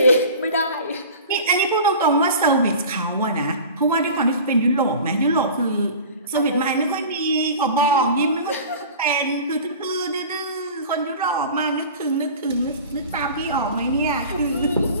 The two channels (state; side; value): inverted; both; correlation -0.39